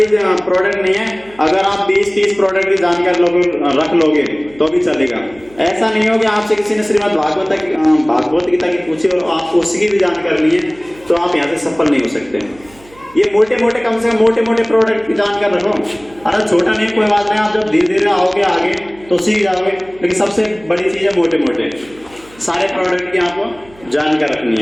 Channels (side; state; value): right; noise; hum, 25 dB below the sound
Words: प्रोडक्ट नहीं है, अगर आप 20-30 प्रोडक्ट की जानकारी रख लोगे तो भी चलेगा। ऐसा नहीं हो कि आपसे किसी ने श्रीमद् भागवत गीता की पूछी और आपको उसकी भी जानकारी नहीं है तो आप यहाँ से सफल नहीं हो सकते। ये मोटे मोटे, कम से कम मोटे मोटे प्रोडक्ट की जानकारी रखो। अरे छोटा नहीं, कोई बात नहीं, आप जब धीरे धीरे आओगे आगे तो सीख जाओगे, लेकिन सबसे बड़ी चीज है मोटे मोटे सारे प्रोडक्ट की आपको जानकारी रखनी